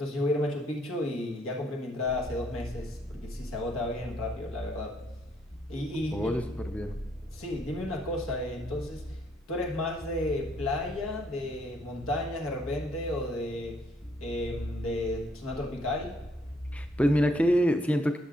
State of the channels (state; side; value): normal; both; correlation 0.69